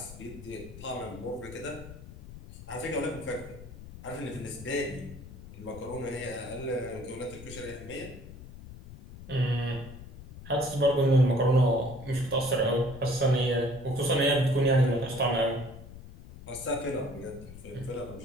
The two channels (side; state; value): left; noise; rumble, 15 dB below the sound